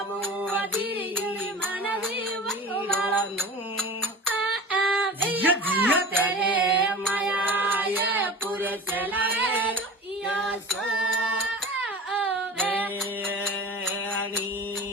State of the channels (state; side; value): normal; both; correlation 0.35